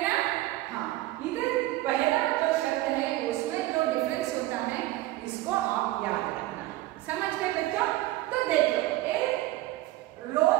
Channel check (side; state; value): left; quieter; 17.0 dB